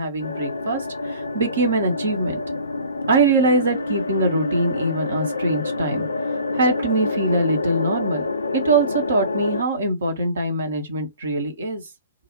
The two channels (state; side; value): inverted; both; correlation -0.50